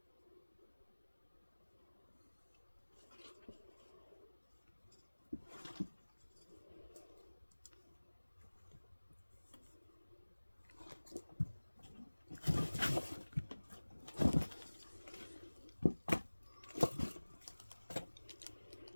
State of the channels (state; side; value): inverted; both; correlation -1.00